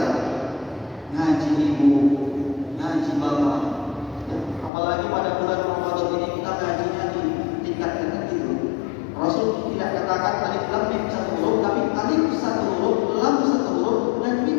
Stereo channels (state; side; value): drops out; right; at 4.7 s